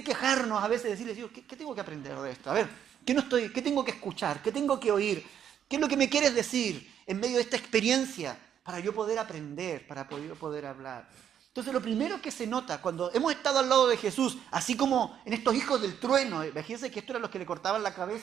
quejarnos a veces, decirles, Dios, ¿qué tengo que aprender de esto? A ver, ¿qué tengo que escuchar? ¿Qué tengo que oír? ¿Qué es lo que me quieres decir en medio de esta experiencia para yo poder aprender, para poder hablar? Entonces lo primero que se nota cuando hemos estado al lado de Jesús, así como en estos hijos del trueno, imagínense que estos eran los que le cortaban la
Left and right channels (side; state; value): left; quieter; 9.2 dB